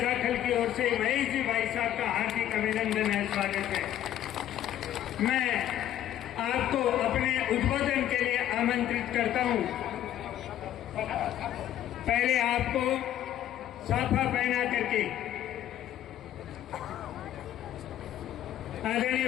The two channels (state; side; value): quieter; right; 11.9 dB